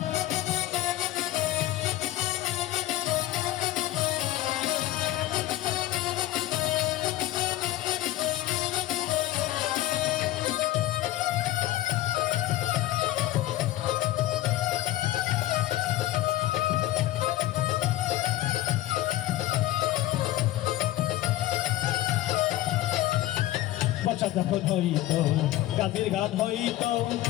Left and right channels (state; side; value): quieter; right; 15.3 dB